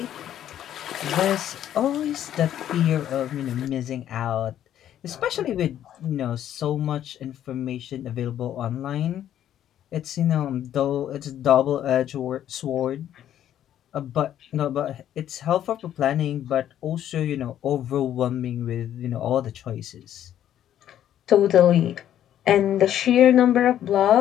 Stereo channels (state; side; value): quieter; right; 11.0 dB